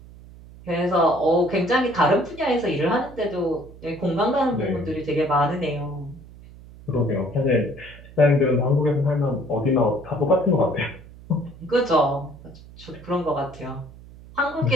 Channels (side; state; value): right; noise; hum, 19 dB below the sound